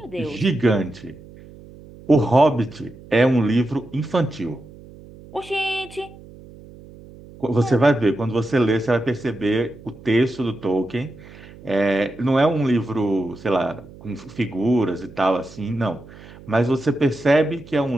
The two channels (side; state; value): right; noise; hum, 20 dB below the sound